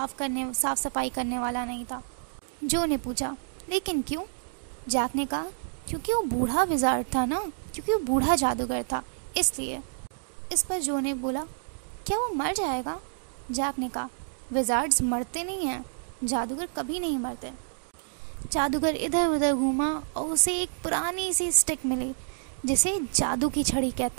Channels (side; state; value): left; silent; digital silence